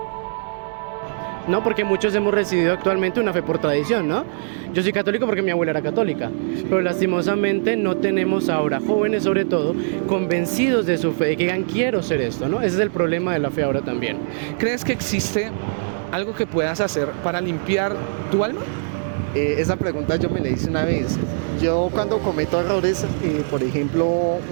No, porque muchos hemos recibido actualmente una fe por tradición, ¿no? Yo soy católico porque mi abuela era católica, pero lastimosamente no tenemos ahora jóvenes, sobre todo, convencidos de su fe, que digan, quiero ser esto, ¿no? Ese es el problema de la fe ahora también. ¿Crees que existe algo que puedas hacer para limpiar tu alma? Esa pregunta yo me la hice una vez. Yo cuando cometo errores, por ejemplo,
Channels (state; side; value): silent; left; digital silence